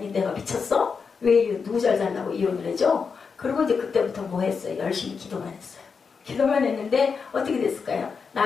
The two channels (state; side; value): quieter; right; 5.5 dB